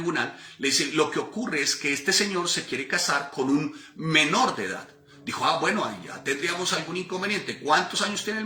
le dice, lo que ocurre es que este señor se quiere casar con un menor de edad. Dijo, bueno, ahí ya tendríamos algún inconveniente. ¿Cuántos años tiene el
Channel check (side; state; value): both; identical; correlation 1.00